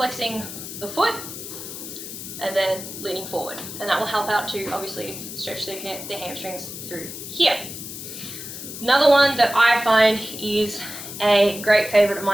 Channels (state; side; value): noise; left; hiss, 10 dB below the sound